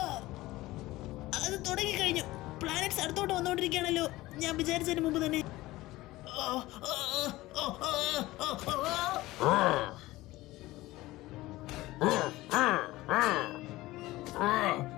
അത് തുടങ്ങിക്കഴിഞ്ഞു. പ്ലാനറ്റ്സ് അടുത്തോട്ട് വന്നുകൊണ്ടിരിക്കുകയാണല്ലോ. ഞാൻ വിചാരിച്ചതിന് മുമ്പ് തന്നെ.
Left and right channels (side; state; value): right; quieter; 18.2 dB